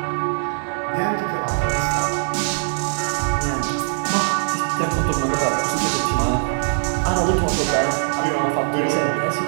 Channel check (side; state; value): left; silent; 65 dB below the other